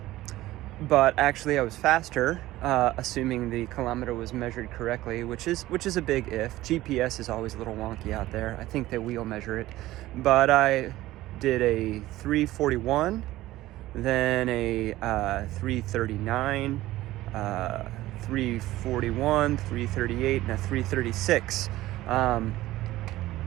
actually I was faster, assuming the kilometer was measured correctly, which is a big if. GPS is always a little wonky out there. I think that we'll measure it. But I did a 3:41, then a 3:39, 3:41, 3:38, and a 3:36.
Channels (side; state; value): left; quieter; 16.4 dB